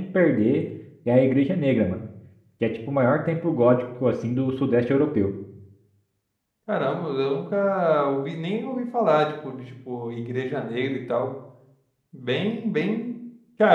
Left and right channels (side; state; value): both; identical; correlation 1.00